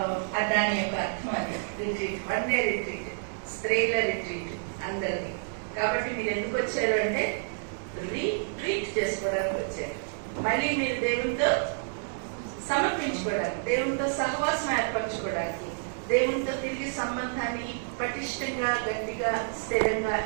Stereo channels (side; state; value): left; silent; digital silence